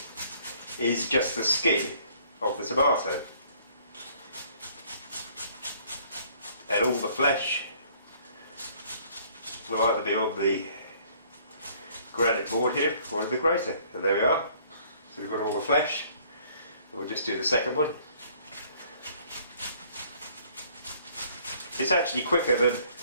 is just the skin of the tomato. And all the flesh will either be on the granite board here or in the grater. And there we are. So we've got all the flesh. We'll just do the second one. It's actually quicker than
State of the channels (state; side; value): inverted; both; correlation -0.59